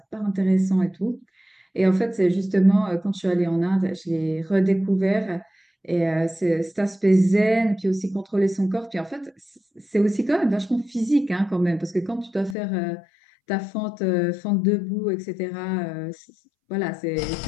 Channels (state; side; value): drops out; right; at 12.6 s